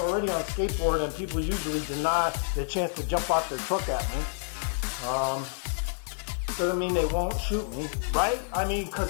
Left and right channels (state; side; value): silent; right; 59 dB below the other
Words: on skateboard, and people usually deny the chance to jump out their truck at me. Doesn't mean they won't shoot me, right? I mean,